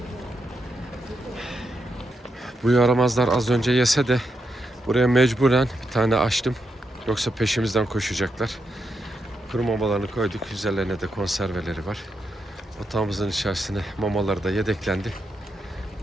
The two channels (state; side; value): normal; both; correlation 0.83